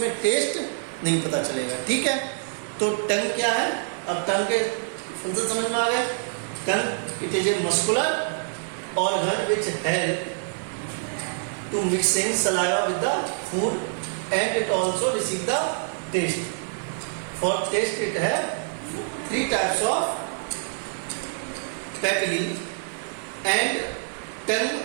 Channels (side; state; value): left; silent; digital silence